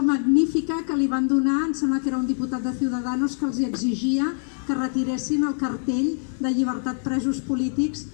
magnífica que li van donar, em sembla que era un diputat de Ciudadanos que els exigia que retiressin el cartell de llibertat presos polítics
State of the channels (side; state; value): right; silent; digital silence